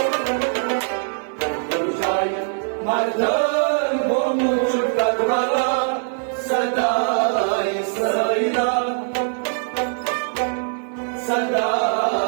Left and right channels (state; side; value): silent; left; digital silence